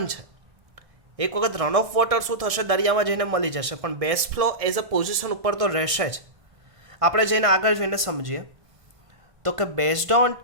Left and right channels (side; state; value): left; late; 1.6 ms